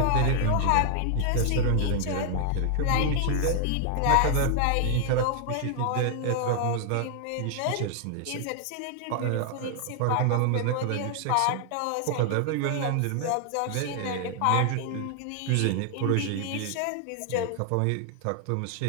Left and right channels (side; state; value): both; different; correlation 0.00